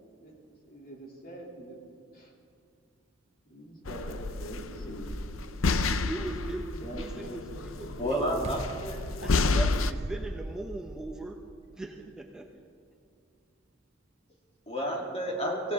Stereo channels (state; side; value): normal; both; correlation 0.57